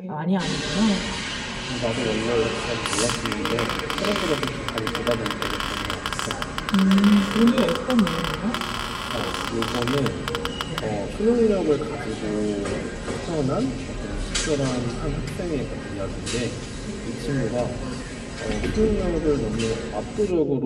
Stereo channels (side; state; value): both; identical; correlation 1.00